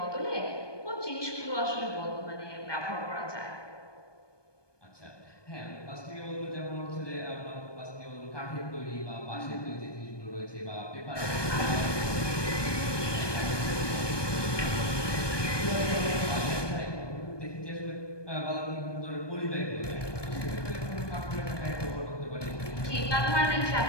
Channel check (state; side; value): late; right; 1.2 ms